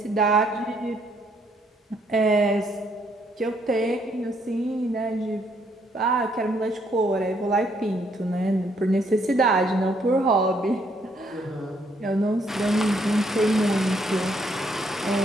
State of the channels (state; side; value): normal; both; correlation 0.70